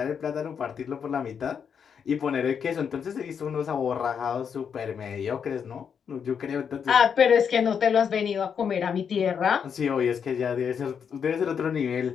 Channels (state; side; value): quieter; right; 7.1 dB